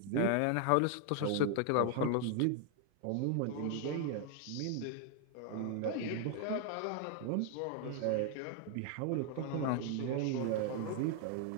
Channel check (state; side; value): different; both; correlation 0.00